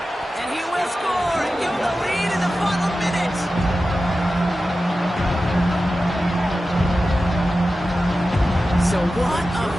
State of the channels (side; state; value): both; normal; correlation 0.93